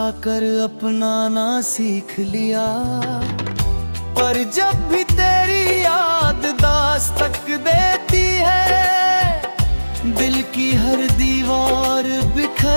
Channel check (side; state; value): both; inverted; correlation -1.00